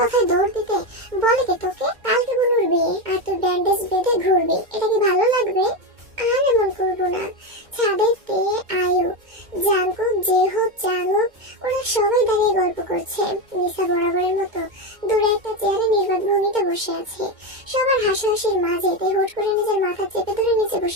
কথায় দৌড় দিতে বলে কে তোকে? কালকে বুনুর বিয়ে, আর তুই ব্যান্ডেজ বেঁধে ঘুরবি, এটা কি ভালো লাগবে? আর এমন করবো না। ছাদে তে, আয়ু, জাঙ্কুক, জেহোপ, জাঙ্গুক ওরা সবাই দাঁড়িয়ে গল্প করছে। নিসা বরাবরের মতো দূরে একটা চেয়ারে নির্বাক ভঙ্গিতে বসে আছে। সবার হাসাহাসির মাঝে তে হুট করে নিজের মাথা চেপে ধরে নিচে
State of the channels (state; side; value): late; left; 2.2 ms